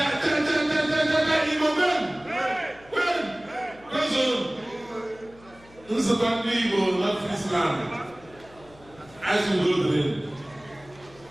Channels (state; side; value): noise; left; hum, 25 dB below the sound